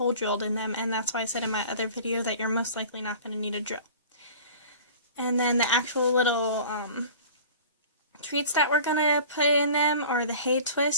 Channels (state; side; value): inverted; both; correlation -0.41